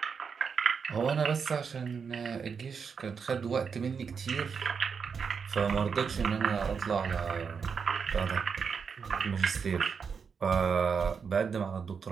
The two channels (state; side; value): quieter; left; 6.1 dB